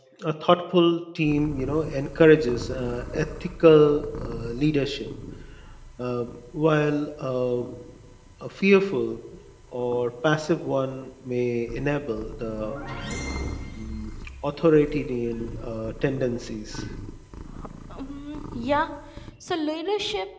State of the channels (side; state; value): both; identical; correlation 1.00